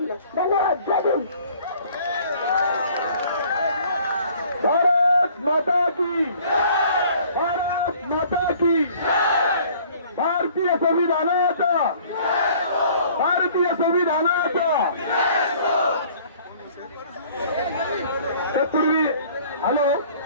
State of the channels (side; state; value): both; inverted; correlation -0.54